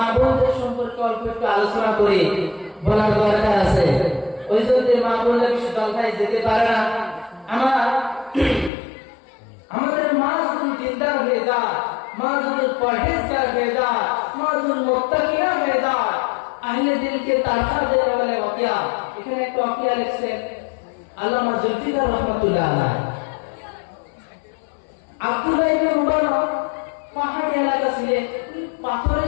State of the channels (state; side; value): drops out; right; at 8.7 s